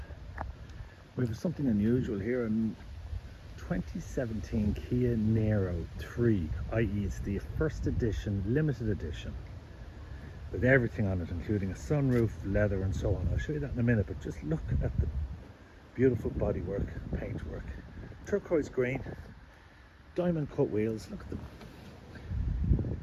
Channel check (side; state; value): both; identical; correlation 1.00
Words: We have something unusual here in 2017 Kia Niro 3, i.e. it's the first edition, limited edition, with everything on it, including a sunroof, leather and so on. I'll show you that in a minute, but just look at the beautiful bodywork, paintwork, turquoise green, diamond cut wheels, look at them.